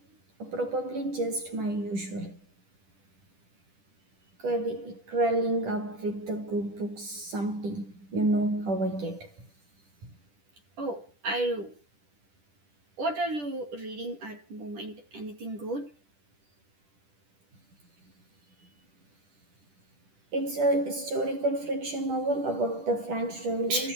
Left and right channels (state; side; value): late; left; 10 ms